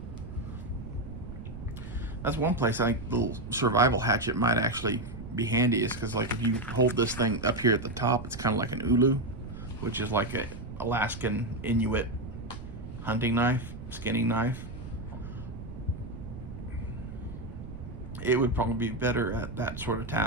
That's one place I think the little survival hatchet might actually be handy, is because, like, if you hold this thing up here at the top, it's kind of like an ulu, which is like a Alaskan Inuit hunting knife, skinning knife. It would probably be better at that sort of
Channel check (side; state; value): right; noise; rumble, 11 dB below the sound